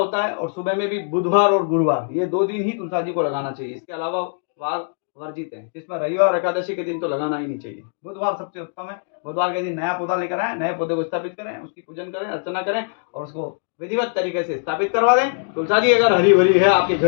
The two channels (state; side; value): silent; right; digital silence